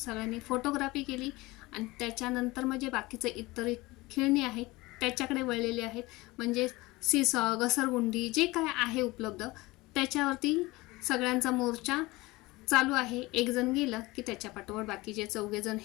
फोटोग्राफी केली आणि त्याच्यानंतर म्हणजे बाकीचे इतर खेळणी आहेत त्याच्याकडे वळलेले आहेत। म्हणजे सीसॉ, घसरगुंडी जे काय आहे उपलब्ध त्याच्यावरती सगळ्यांचा मोर्चा चालू आहे। एक जण गेलं की त्याच्या पाठोपाठ बाकीचे 4 जण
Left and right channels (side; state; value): right; quieter; 21.4 dB